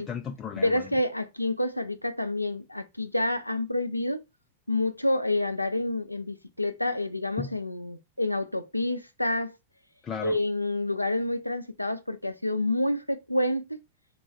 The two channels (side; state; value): both; inverted; correlation -0.87